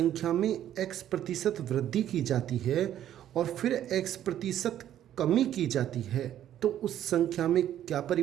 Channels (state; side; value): quieter; left; 11.3 dB